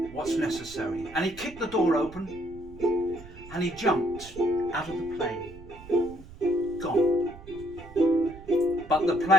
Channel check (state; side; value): noise; right; rumble, 18 dB below the sound